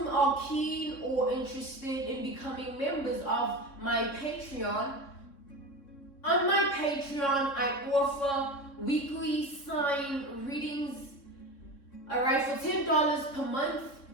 are keen or interested in becoming members of my Patreon, on my Patreon, I offer weekly sign readings, alright, for $10 per month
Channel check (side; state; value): right; late; 3.8 ms